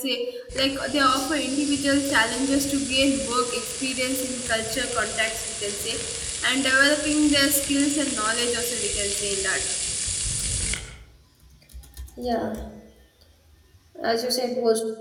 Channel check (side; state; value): both; identical; correlation 1.00